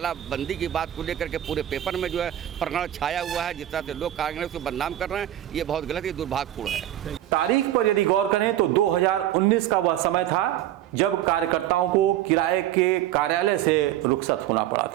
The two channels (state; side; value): quieter; left; 12.7 dB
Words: की बात को लेकर के पूरे पेपर में जो है प्रकरण छाया हुआ है, जिस तरह से लोग कांग्रेस को बदनाम कर रहे हैं, ये बहुत गलत, ये दुर्भाग्यपूर्ण है। तारीख पर यदि गौर करें तो 2019 का वह समय था जब कार्यकर्ताओं को किराए के कार्यालय से रुखसत होना पड़ा